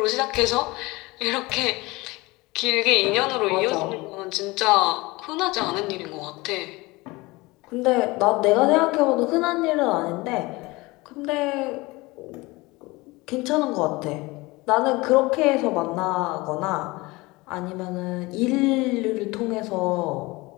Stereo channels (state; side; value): quieter; right; 22.5 dB